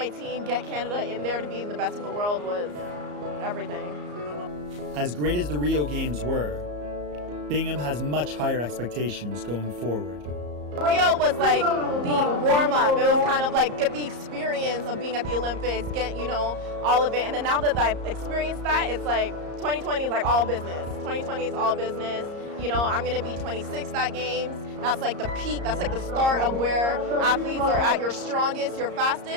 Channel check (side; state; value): left; late; 34 ms